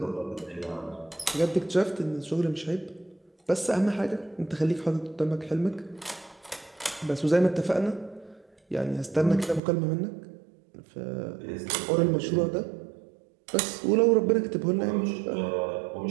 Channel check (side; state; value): left; drops out; at 9.6 s